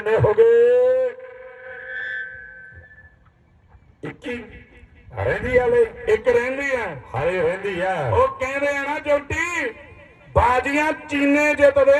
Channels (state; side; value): identical; both; correlation 1.00